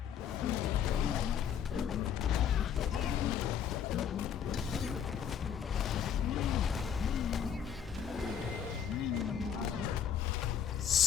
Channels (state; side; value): quieter; right; 8.3 dB